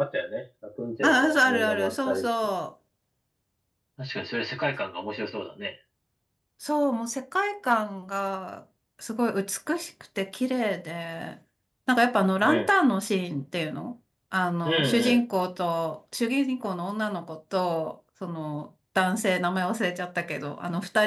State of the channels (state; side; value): identical; both; correlation 1.00